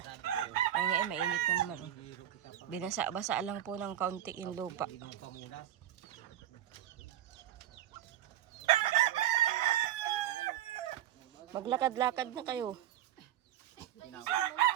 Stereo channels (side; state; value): left; quieter; 11.9 dB